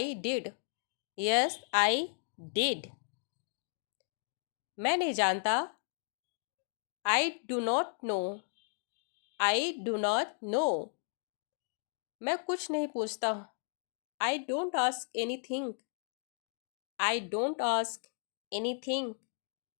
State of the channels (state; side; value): silent; right; 55 dB below the other